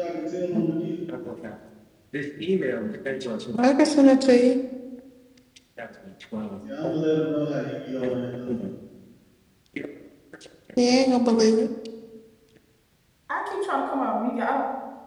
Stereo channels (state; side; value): identical; both; correlation 1.00